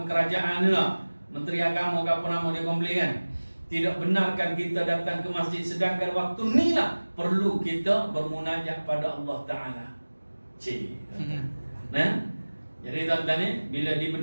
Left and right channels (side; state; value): both; inverted; correlation -1.00